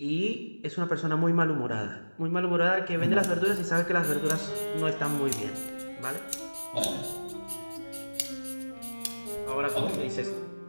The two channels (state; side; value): inverted; both; correlation -1.00